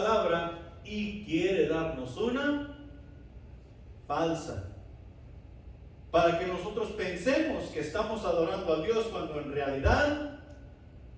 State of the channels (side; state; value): both; identical; correlation 1.00